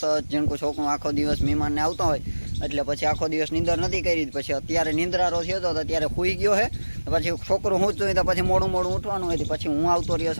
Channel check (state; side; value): inverted; both; correlation -1.00